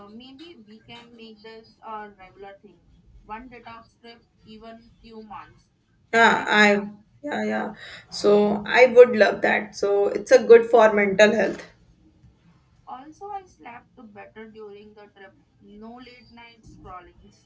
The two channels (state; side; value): identical; both; correlation 1.00